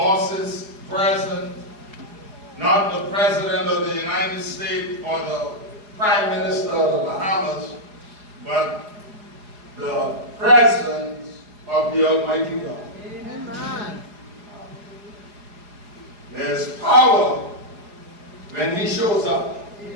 presence, not the President of the United States or the Prime Minister of the Bahamas, but the presence of the Almighty God. Amen. There's power when he shows up.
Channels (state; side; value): late; left; 4.8 ms